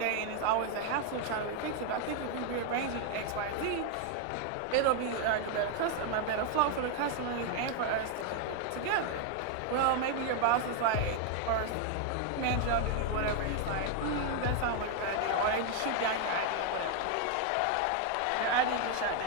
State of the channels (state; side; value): different; both; correlation 0.01